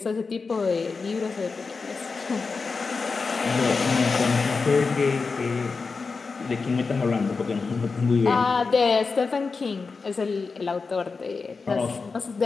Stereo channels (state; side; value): quieter; right; 4.5 dB